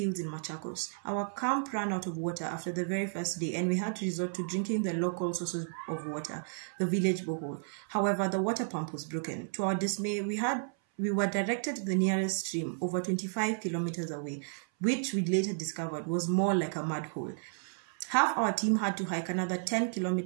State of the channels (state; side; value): silent; left; 56 dB below the other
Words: in Machakos. Our camp ran out of water after the very first day, and we had to resort to drinking the local sources of water, the village borehole. However, the water pump was broken. To our dismay, we were directed to the nearest stream, over 25 kilometers away, which we later discovered was more like a mud hole. Half our team had to hike another 10